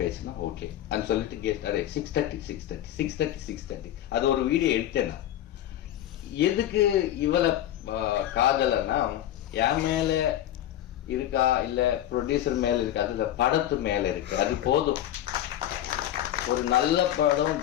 ஓகே அப்படின்னு சொல்லிட்டு கெஸ்ட் அதே 6:30 அது ஒரு வீடியோ எடுத்தேன். எதுக்கு இவளை காதலன்னா என் மேல இருக்கா இல்ல ப்ரொடியூசர் மேல இருக்கா, அது படத்து மேல இருக்கு. அது போதும். ஒரு நல்ல படம்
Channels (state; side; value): quieter; right; 12.3 dB